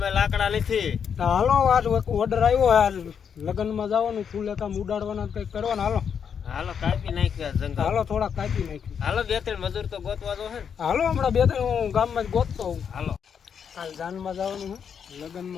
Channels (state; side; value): quieter; right; 7.3 dB